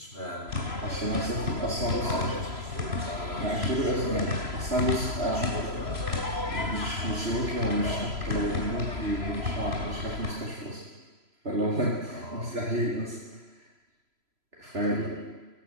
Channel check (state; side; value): late; left; 3.0 ms